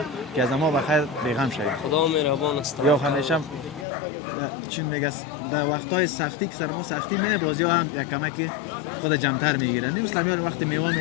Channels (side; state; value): right; drops out; at 3.9 s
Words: که از ما بخیر بیغم شویم. خدا مهربان است. یا همیشه چون میگه در وقت‌های سختی که سر ما سختی میه بازی‌ها هم یک کمکی خود جمع‌تر میگیره. نه مثلا میاد وقتی میوه